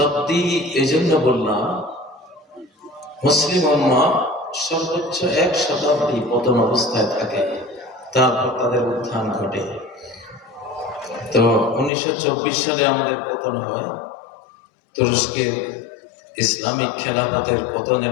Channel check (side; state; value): right; drops out; at 11.9 s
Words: এজন্য বললাম, মুসলিম উম্মাহ সর্বোচ্চ 1 শতাব্দী পতন অবস্থায় থাকে, তারপর তাদের উত্থান ঘটে। তো 1924 সালে আমাদের পতন হয় তুরস্কের ইসলামিক খেলাফতের